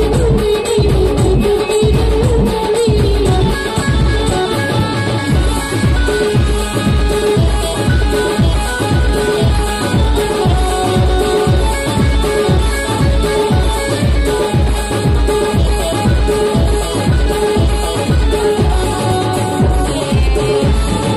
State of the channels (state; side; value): identical; both; correlation 1.00